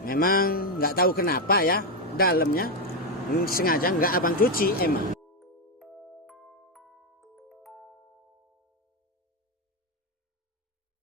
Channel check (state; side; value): normal; both; correlation 0.06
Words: memang nggak tahu kenapa ya, dalamnya sengaja nggak abang cuci emang.